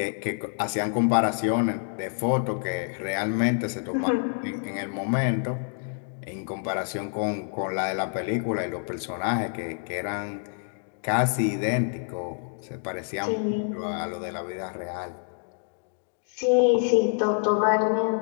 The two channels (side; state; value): right; silent; digital silence